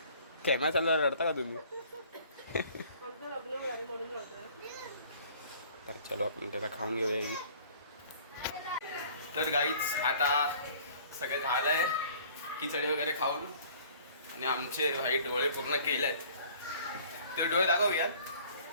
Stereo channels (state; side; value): inverted; both; correlation -0.52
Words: कॅमेरा चालू रडता का तुम्ही? तर चलो आपण त्याचा खाऊन घेऊया. तर गाईच आता सगळे झालंय खिचडी वगैरे खाऊन, आणि आमचे भाई डोळे पूर्ण केलेत. ते डोळे दाखवूयात.